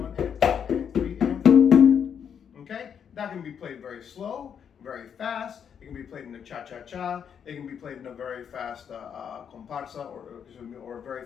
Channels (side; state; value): right; quieter; 7.8 dB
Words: and 2 and 3 and 4 and. Okay? That can be played very slow, very fast. It can be played in a cha-cha-cha. It can be played in a very fast comparsa or a very